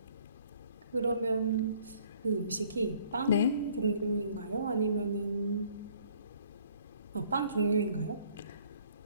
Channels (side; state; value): both; inverted; correlation -0.59